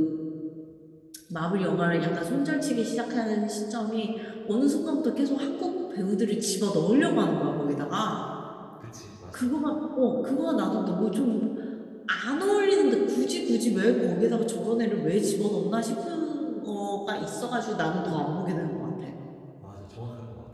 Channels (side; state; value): both; identical; correlation 1.00